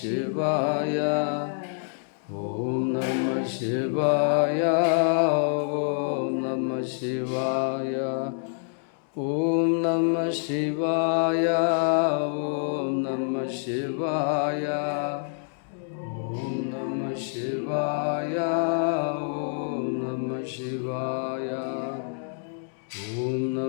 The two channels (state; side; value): silent; right; digital silence